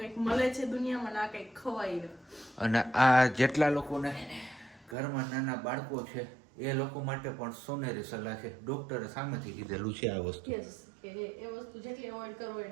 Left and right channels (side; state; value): left; drops out; at 5.0 s